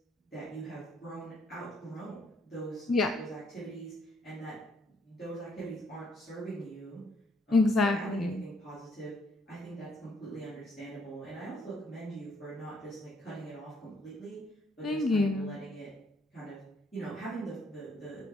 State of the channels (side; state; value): both; normal; correlation 0.68